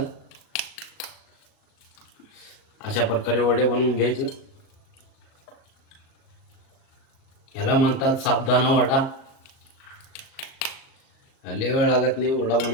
अशा प्रकारे वडे बनवून घ्यायचे. ह्याला म्हणतात साबुदाणा वडा. लय वेळ लागत नाही वडा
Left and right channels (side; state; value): right; late; 38 ms